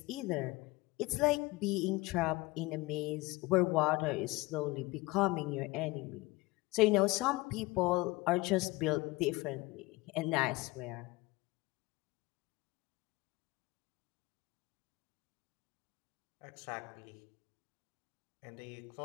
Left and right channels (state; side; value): quieter; right; 21.6 dB